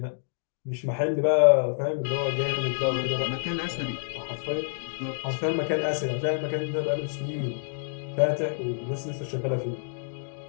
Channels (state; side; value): silent; right; digital silence